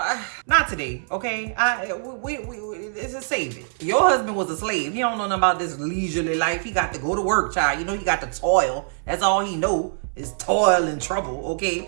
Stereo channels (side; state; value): left; silent; 63 dB below the other